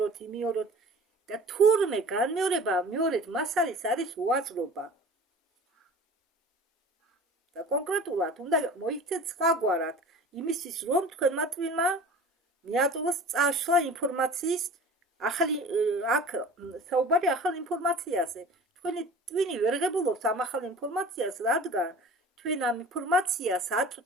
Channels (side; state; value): both; normal; correlation 0.41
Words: და თურმე განმეორება მეორედ მას არის უაზრობა. და კონკრეტულად უნდა მოიქცეთ სხვაგვარად იმისთვის, რომ თქვენმა ტვინმა მიაწვდოს წაშლა ინფორმაციის ახალი აქ საუბარი ახალ ინფორმაციაზე. თქვენი ტვინი ვერ ღებულობს ამ ახალ ინფორმაციას, რადგან თქვენ ამ ინფორმაციას